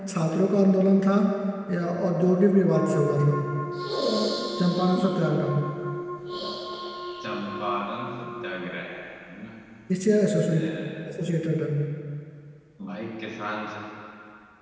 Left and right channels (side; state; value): both; identical; correlation 1.00